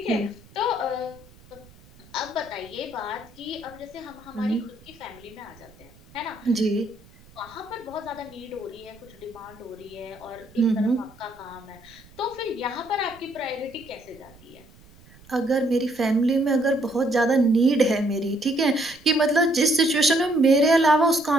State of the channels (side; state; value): right; noise; rumble, 25 dB below the sound